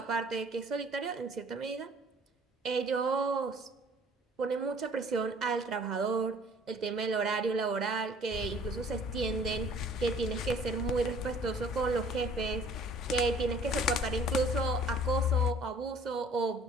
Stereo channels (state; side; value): normal; both; correlation 0.54